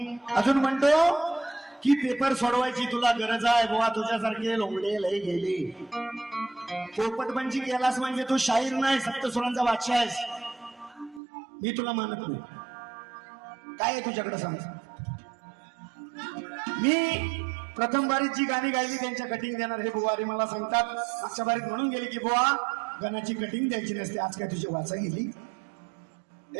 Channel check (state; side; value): drops out; left; at 11.2 s